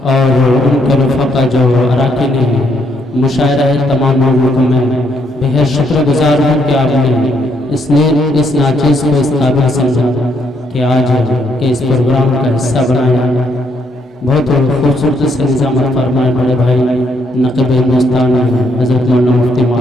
اور ان کے رفقا جو اراکین ہیں مشاعرہ تمام لوگوں کو میں بہت شکر گزار ہوں کہ آپ نے اس ناچیز کو اس قابل سمجھا کہ آج کے اس پروگرام کا حصہ بنایا. بہت خوبصورت سے نظامت فرمائے بڑے بھائی نقیب ہندوستان حضرت مولانا مفتی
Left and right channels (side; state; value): both; normal; correlation 0.73